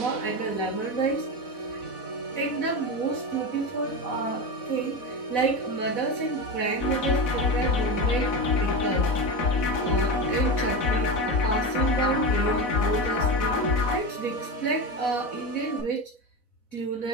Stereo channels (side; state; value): right; late; 4.1 ms